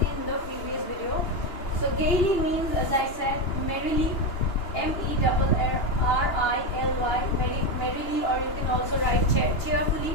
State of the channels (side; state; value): right; late; 2.9 ms